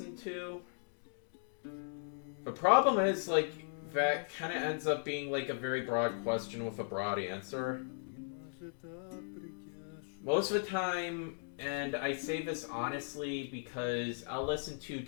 to? The problem is, like, that kind of ends up being, like, a very broad question with a broad answer. Most of the time, and I say this honestly because I'll listen to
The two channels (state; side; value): silent; right; digital silence